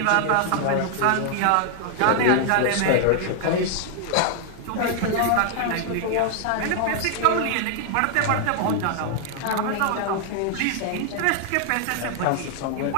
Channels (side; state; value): both; different; correlation 0.00